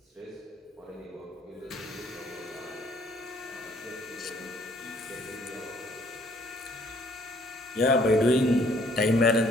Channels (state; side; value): normal; both; correlation 0.62